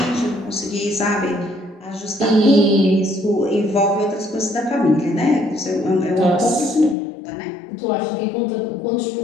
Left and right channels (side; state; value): right; drops out; at 7.0 s